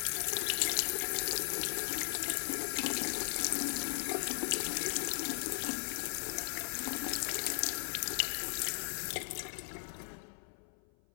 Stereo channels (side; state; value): right; silent; 53 dB below the other